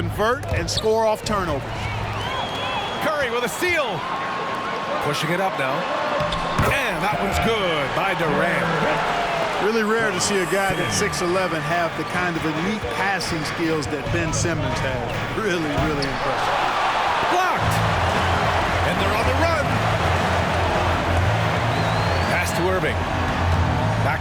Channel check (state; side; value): identical; both; correlation 1.00